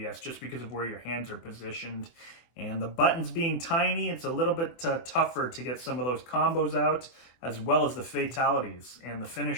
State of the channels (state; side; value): late; right; 24 ms